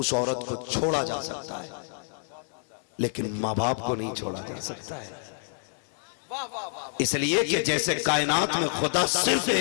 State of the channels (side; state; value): right; silent; digital silence